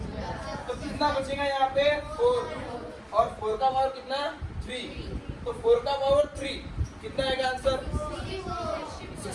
तो कितना बचेगा यहाँ पे 4 और 4 का पावर कितना 3। तो 4 का पावर 3 कितना आएगा आंसर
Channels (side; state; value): both; identical; correlation 1.00